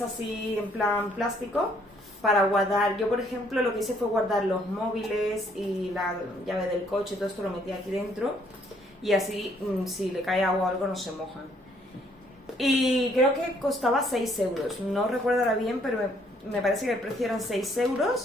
en plan plástico para guardar. Yo, por ejemplo, lo que hice fue guardar los móviles y la llave del coche, todo esto lo metí aquí dentro y así si le cae agua o algo no se mojan. Y creo que costaba 6 euros. No recuerdo ahora bien, pero me parece que el precio eran 6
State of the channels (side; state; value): both; normal; correlation 0.66